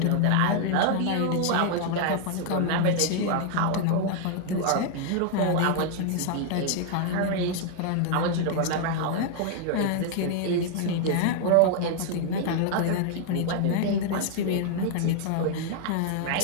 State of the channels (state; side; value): different; both; correlation 0.00